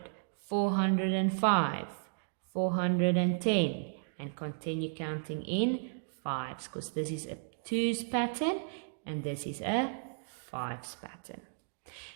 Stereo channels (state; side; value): silent; left; digital silence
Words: 405, 410, and continue counting in 5s, because this is a 2s pattern and this is a 5s pattern.